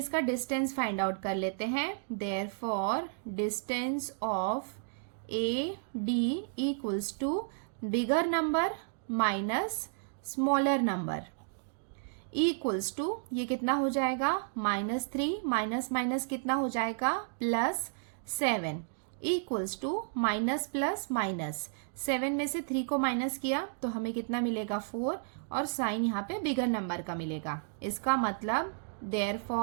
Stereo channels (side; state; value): left; silent; digital silence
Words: डिस्टेंस फाइंड आउट कर लेते हैं। Therefore distance of AD equals to bigger number minus smaller number equals to, ये कितना हो जाएगा -3 माइनस माइनस कितना हो जाएगा +7 equals to minus plus minus. 7 में से 3 को माइनस किया तो हमें कितना मिलेगा 4, और साइन यहाँ पे बिगर नंबर का मिलेगा। इसका मतलब